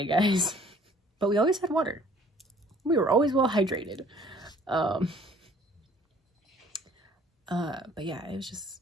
guys. But we always had water. We were always well hydrated. But yeah, it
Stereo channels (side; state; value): both; normal; correlation 0.56